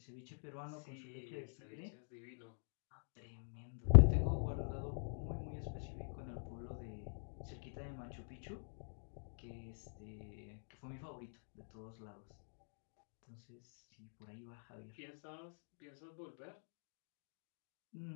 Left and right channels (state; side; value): silent; right; digital silence